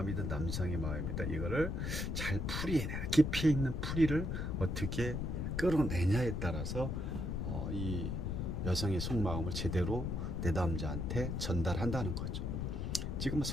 남성의 마음이든 이거를 잘 깊이 있는 풀이를 어떻게 끌어내냐에 따라서 이 여성의 속마음을 제대로 내 남자한테 전달한다는 거죠. 지금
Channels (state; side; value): noise; left; rumble, 1 dB below the sound